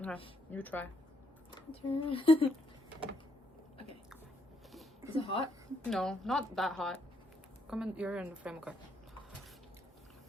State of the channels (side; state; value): both; normal; correlation 0.74